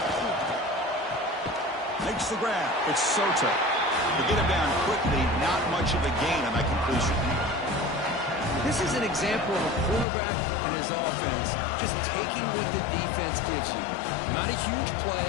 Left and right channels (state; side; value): drops out; right; at 10.1 s